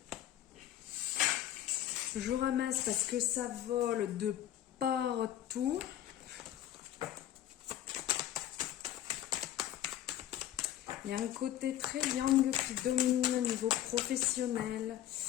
Je ramasse parce que ça vole de partout. Il y a un côté très yang qui domine au niveau professionnel.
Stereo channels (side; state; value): right; quieter; 12.2 dB